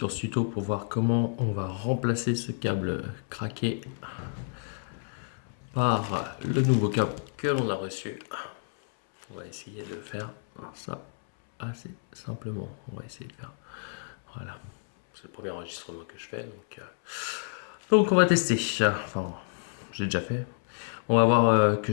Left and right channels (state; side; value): silent; right; 58 dB below the other